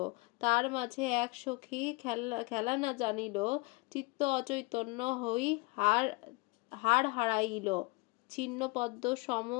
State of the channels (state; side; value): quieter; right; 26.8 dB